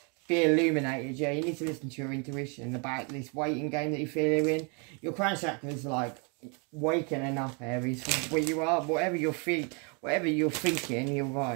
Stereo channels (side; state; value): left; quieter; 35.0 dB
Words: Be illuminated, yeah. You need to listen to your intuition about this waiting game that you feel you're in. Your crown chakra is like waking up, Aries, from where you are. Whatever you're thinking, you're